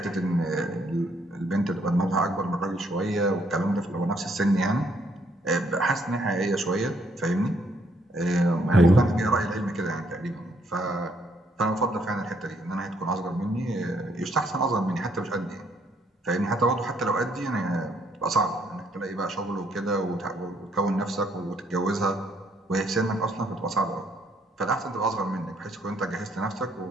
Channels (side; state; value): both; normal; correlation 0.70